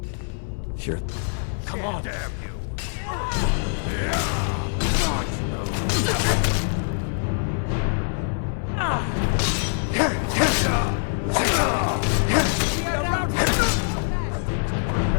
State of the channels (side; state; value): right; silent; digital silence